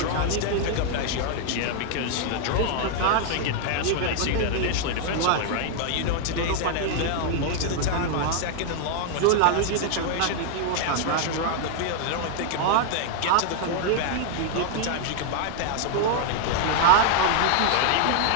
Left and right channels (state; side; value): different; both; correlation 0.00